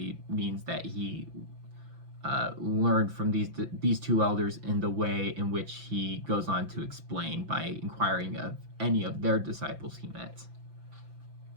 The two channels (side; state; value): left; late; 5.9 ms